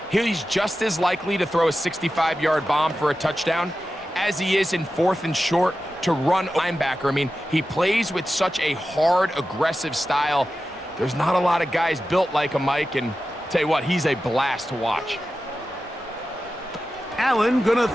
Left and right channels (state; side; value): normal; both; correlation 0.93